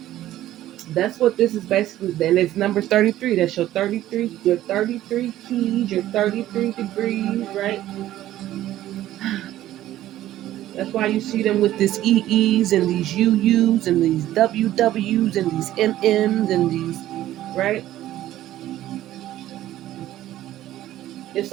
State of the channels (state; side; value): quieter; left; 13.8 dB